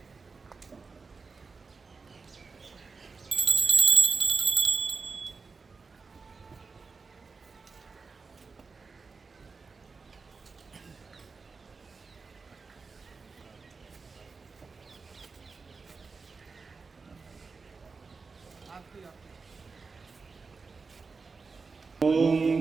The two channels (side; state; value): left; quieter; 4.5 dB